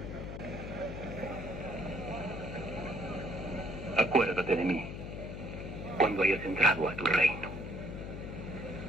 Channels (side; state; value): left; noise; hum, 8 dB below the sound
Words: Acuérdate de mí cuando hayas entrado a tu reino.